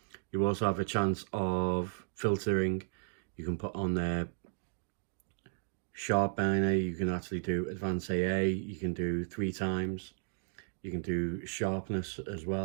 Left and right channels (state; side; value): silent; left; digital silence